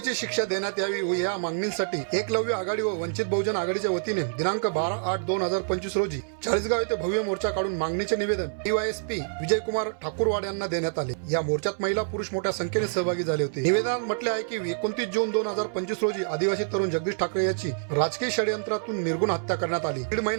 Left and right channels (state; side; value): silent; left; 60 dB below the other